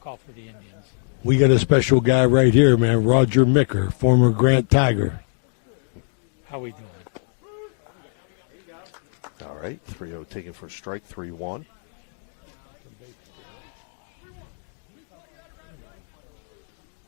for the Indians. We got a special guy right here, man. Roger Micker, former Grant Tiger. How we doing? All right, 3-0 taken for a strike, 3-1.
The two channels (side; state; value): right; silent; 63 dB below the other